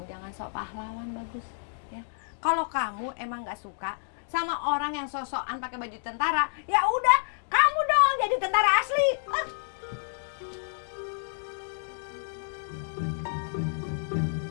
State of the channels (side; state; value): right; silent; digital silence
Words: jangan sok pahlawan, Bagus. Ya, kalau kamu emang nggak suka sama orang yang sosokan pakai baju tentara, ya udah, kamu dong jadi tentara asli.